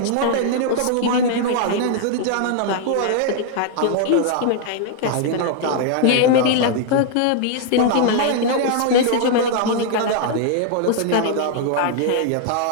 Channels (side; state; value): both; different; correlation 0.00